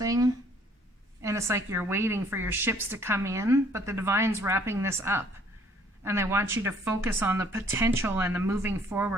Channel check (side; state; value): both; normal; correlation 0.60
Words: and it's like you're waiting for your ships to come in, but the divine's wrapping this up. And they want you to focus on the potential and the moving